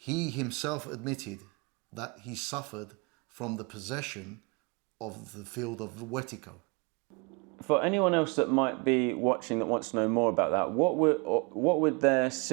himself admitted that he suffered from the possession of the field of Wetiko. For anyone else that might be watching that wants to know more about that, what would their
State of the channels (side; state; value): left; quieter; 30.5 dB